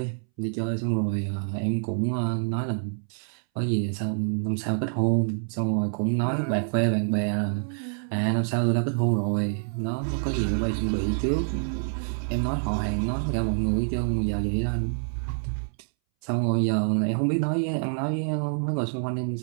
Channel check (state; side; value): silent; left; 60 dB below the other